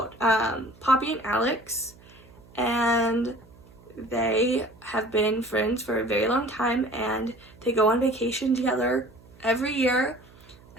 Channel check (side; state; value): right; noise; hum, 25 dB below the sound